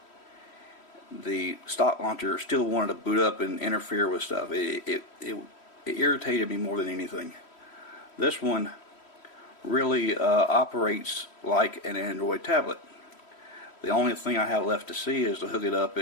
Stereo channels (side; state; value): right; late; 3.1 ms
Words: the stock launcher still wanted to boot up and interfere with stuff. It irritated me more than anything. This one really operates like an Android tablet. The only thing I have left to see is to hook it up